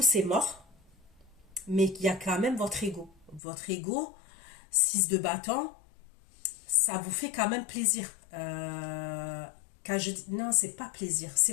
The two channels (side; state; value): right; drops out; at 3.4 s